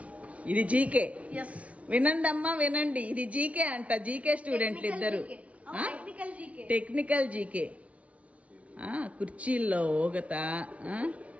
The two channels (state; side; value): late; left; 0.065 ms